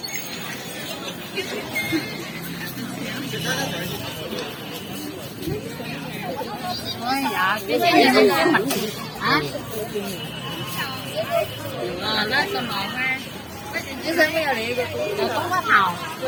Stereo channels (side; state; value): both; identical; correlation 1.00